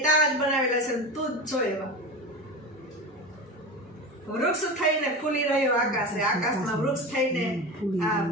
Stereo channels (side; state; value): both; normal; correlation 0.26